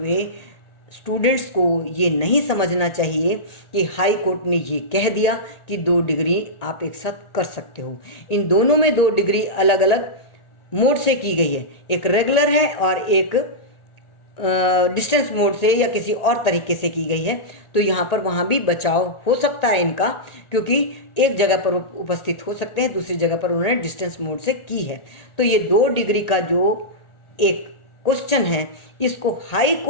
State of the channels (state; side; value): late; right; 1.8 ms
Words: स्टूडेंट्स को ये नहीं समझना चाहिए कि हाई कोर्ट ने ये कह दिया कि 2 डिग्री आप एक साथ कर सकते हो। इन दोनों में 2 डिग्री अलग अलग मोड से की गई है, एक रेगुलर है और एक डिस्टेंस मोड से या किसी और तरीके से की गई है। तो यहाँ पर वहाँ भी बचाव हो सकता है इनका, क्योंकि एक जगह पर उपस्थित हो सकते हैं, दूसरी जगह पर उन्होंने डिस्टेंस मोड से की है। तो ये 2 डिग्री का जो एक क्वेश्चन है, इसको हाई